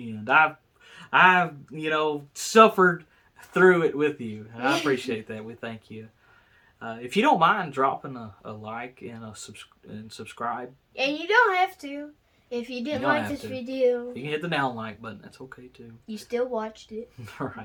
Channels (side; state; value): both; identical; correlation 1.00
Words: end. I've suffered through it with you. And I appreciate that. We thank you. If you don't mind dropping a like and subscribe. And you don't have to. If you didn't like this video. You can hit the down like button. That's okay, too. You still watched it. All